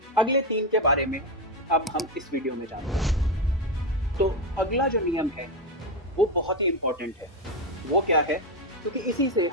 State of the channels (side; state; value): both; normal; correlation 0.10